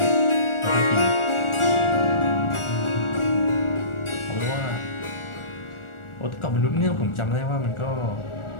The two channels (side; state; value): right; late; 1.4 ms